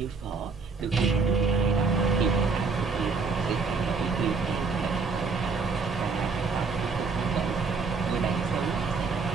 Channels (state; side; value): quieter; left; 4.6 dB